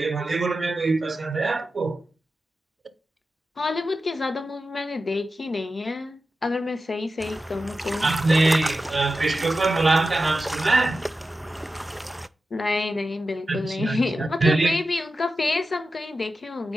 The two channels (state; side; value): normal; both; correlation 0.92